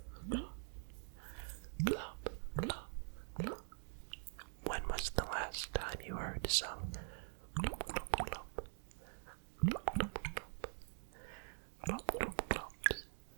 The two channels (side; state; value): left; silent; digital silence